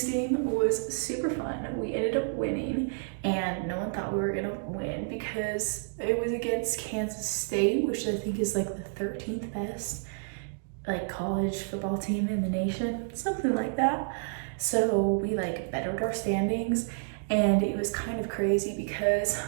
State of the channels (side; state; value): left; silent; digital silence